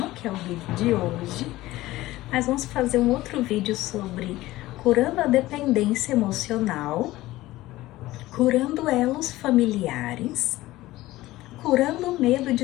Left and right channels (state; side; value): quieter; right; 17.2 dB